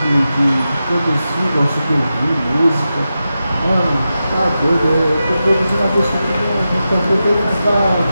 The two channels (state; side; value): inverted; both; correlation -0.91